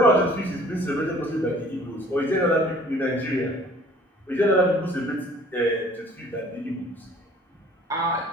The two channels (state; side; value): normal; both; correlation 0.53